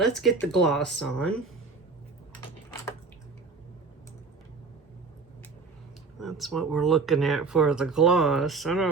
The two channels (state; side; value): quieter; left; 4.3 dB